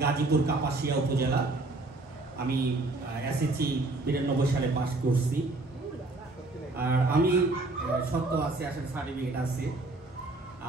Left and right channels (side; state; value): left; quieter; 3.1 dB